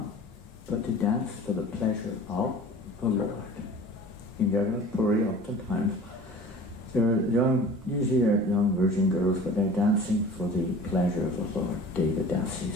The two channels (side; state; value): both; normal; correlation 0.42